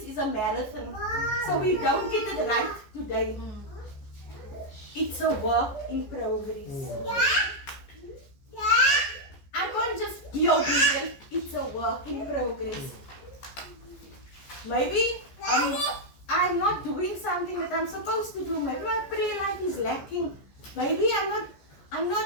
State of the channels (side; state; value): right; late; 14 ms